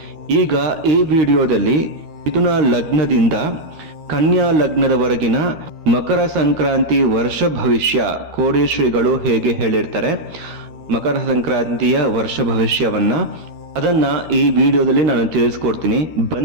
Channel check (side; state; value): left; late; 13 ms